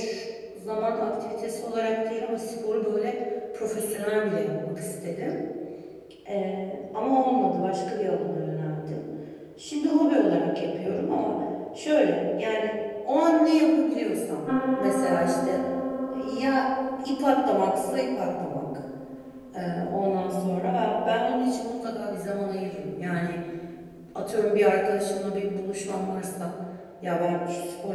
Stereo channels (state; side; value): identical; both; correlation 1.00